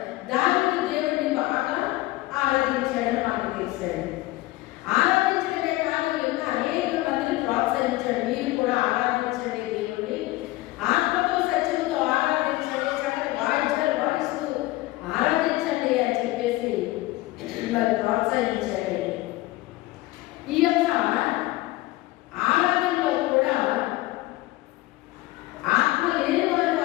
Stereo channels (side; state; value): right; quieter; 18.7 dB